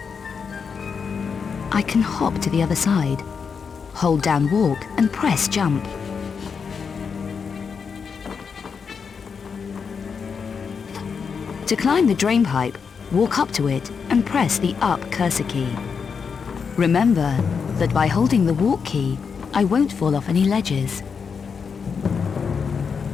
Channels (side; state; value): right; quieter; 6.0 dB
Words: I can hop to the other side. Hold down walk and press jump. To climb the drain pipe, walk up to it and press the up cursor key. Remember that by holding the walk key, I won't fall off any ledges.